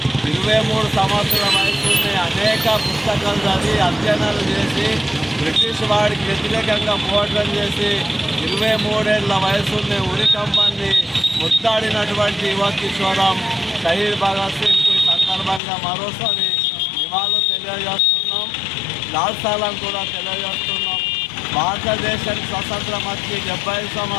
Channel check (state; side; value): drops out; right; at 15.6 s